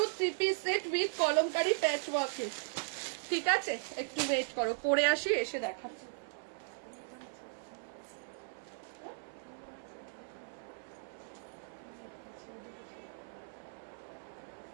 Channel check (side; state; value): left; silent; 53 dB below the other